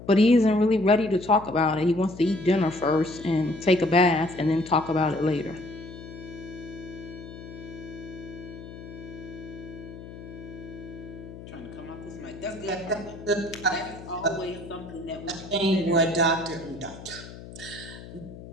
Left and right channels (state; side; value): noise; left; hum, 14 dB below the sound